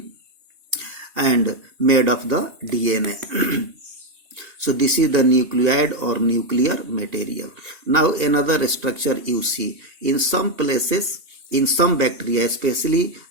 and made of the DNA. So this is the nucleoid or nuclear material. Now another structure you see in some places, in some bacteria, especially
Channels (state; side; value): late; left; 2.8 ms